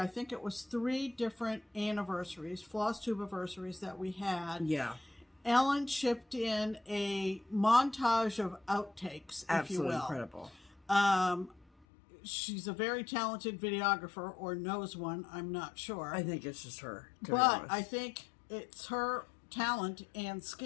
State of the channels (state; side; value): drops out; right; at 11.9 s